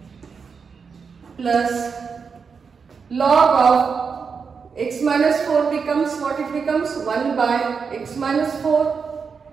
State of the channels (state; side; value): quieter; left; 5.7 dB